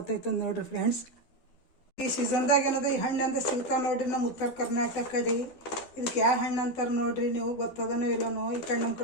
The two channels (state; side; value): late; right; 12 ms